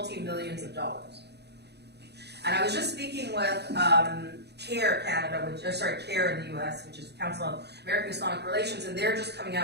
of dollars. And I was just speaking with CARE Canada, CARE in the US, which is the Council of American Islamic Relations, and they're just coming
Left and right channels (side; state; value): left; late; 0.48 ms